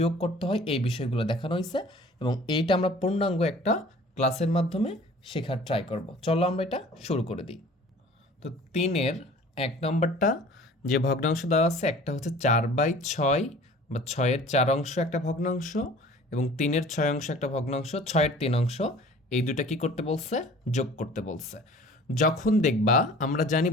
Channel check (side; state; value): both; normal; correlation 0.47